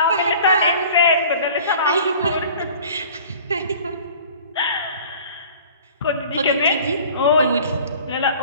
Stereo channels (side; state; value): both; inverted; correlation -0.47